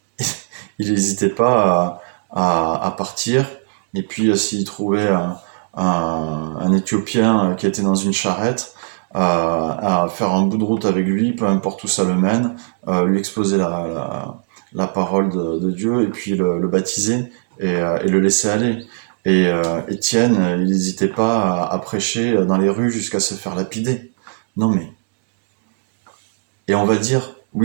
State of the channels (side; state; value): left; silent; digital silence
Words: il n'hésitait pas à partir. Et puis, s'il trouvait un Éthiopien qui était dans une charrette, à faire un bout de route avec lui, peu importe où ça le mène, lui exposer la parole de Dieu et puis le baptiser et le laisser aller. Et Étienne, il n'hésitait pas à prêcher dans les rues jusqu'à se faire lapider. Non mais, et on va dire,